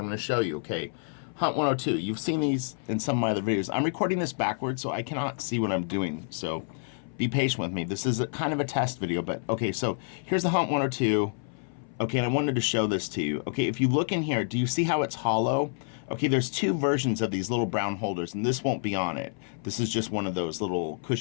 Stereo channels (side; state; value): right; silent; 58 dB below the other